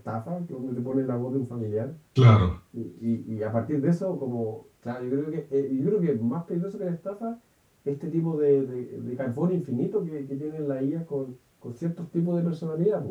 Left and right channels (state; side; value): identical; both; correlation 1.00